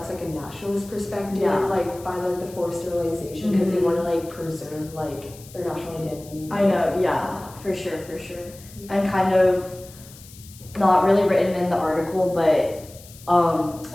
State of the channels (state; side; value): noise; left; hiss, 20 dB below the sound